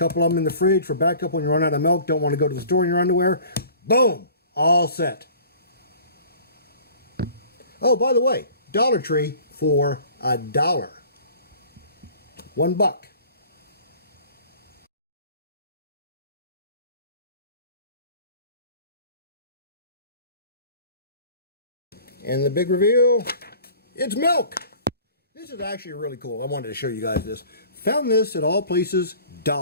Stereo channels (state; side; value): inverted; both; correlation -0.47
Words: of them in the fridge for backup when you run out of milk, don't want to go to the store in your underwear. Boom! All set. Oh, by the way, Dollar Tree for $1. $1. And the big reveal, it's milk. This is actually really cool. I wanted to show you guys this. Found this at all places,